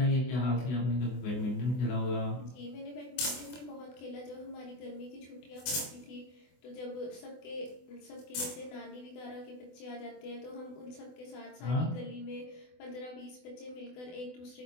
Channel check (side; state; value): right; late; 24 ms